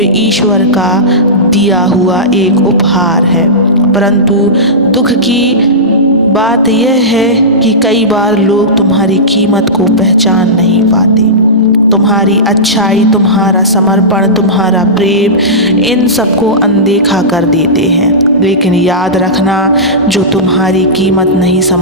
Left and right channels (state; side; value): normal; both; correlation -0.17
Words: ईश्वर का दिया हुआ एक उपहार है। परंतु दुख की बात यह है कि कई बार लोग तुम्हारी कीमत को पहचान नहीं पाते। तुम्हारी अच्छाई, तुम्हारा समर्पण, तुम्हारा प्रेम, इन सबको अनदेखा कर देते हैं। लेकिन याद रखना, जो तुम्हारी कीमत नहीं